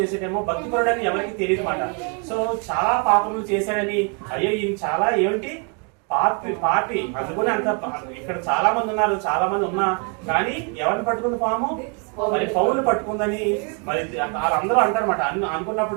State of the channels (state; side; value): quieter; left; 36.1 dB